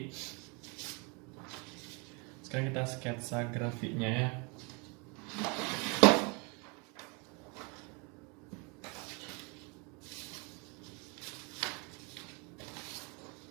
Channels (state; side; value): quieter; left; 32.0 dB